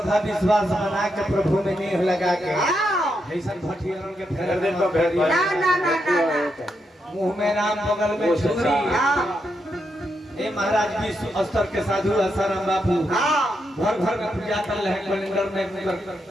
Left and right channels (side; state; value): both; normal; correlation 0.82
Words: विश्वास बना के प्रभु में नेह लगा के ऐसा भटियारों के फेर दे तो ना ना ना मुंह में राम बगल में छुरी ए महाराज विश्व स्तर के साधु आसाराम बापू घर घर में पूजा कर रहे कैलेंडर में